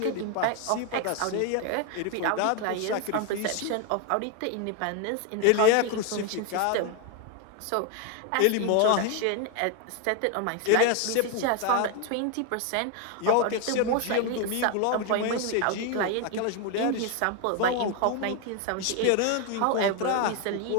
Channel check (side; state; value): both; different; correlation 0.01